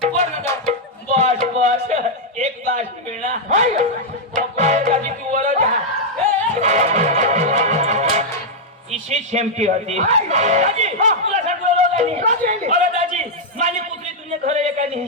वर ना जाऊ बस बस एक बास मिळणार दाजी तू वर जा इशी शेमटी होती दाजी तुला सांगतो अरे दाजी माझी कुत्री तुझे घर आहे का नाही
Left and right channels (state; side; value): normal; both; correlation -0.04